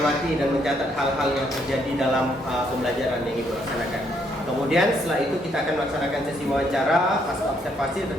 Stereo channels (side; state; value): both; normal; correlation 0.72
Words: dan mencatat hal-hal yang terjadi dalam pembelajaran yang Ibu laksanakan. Kemudian setelah itu kita akan melaksanakan sesi wawancara pasca observasi